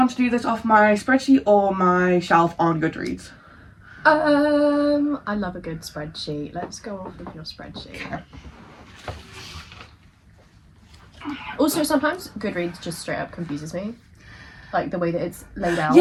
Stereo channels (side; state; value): both; identical; correlation 1.00